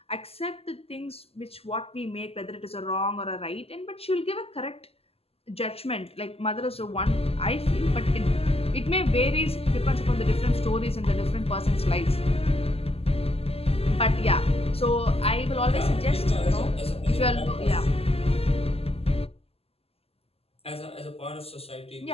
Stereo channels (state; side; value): late; right; 0.29 ms